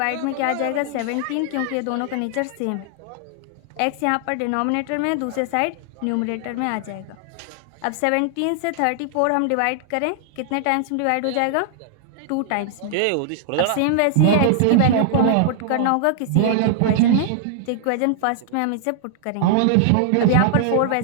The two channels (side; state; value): both; different; correlation 0.00